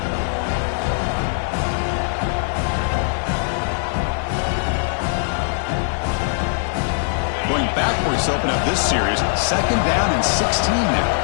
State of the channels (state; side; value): silent; right; 65 dB below the other